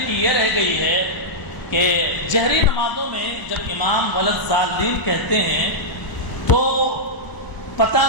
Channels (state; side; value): late; right; 1.0 ms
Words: کی یہ رہ گئی ہے کہ جہری نمازوں میں جب امام ولضالین کہتے ہیں تو پتہ